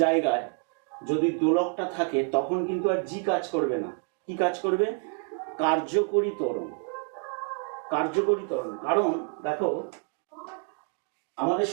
জায়গায় যদি দোলকটা থাকে তখন কিন্তু আর জি কাজ করবে না। কি কাজ করবে? কার্যকরী ত্বরণ। কার্যকরী ত্বরণ, কারণ দেখো আমাদের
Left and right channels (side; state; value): left; quieter; 37.2 dB